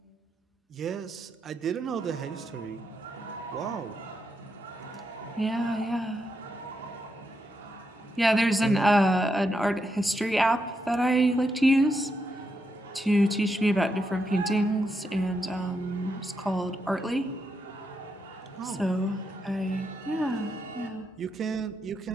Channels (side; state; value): both; normal; correlation 0.82